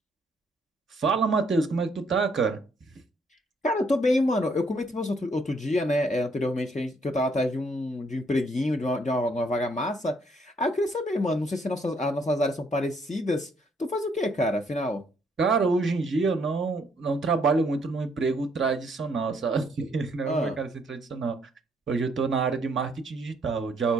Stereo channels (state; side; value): normal; both; correlation 0.69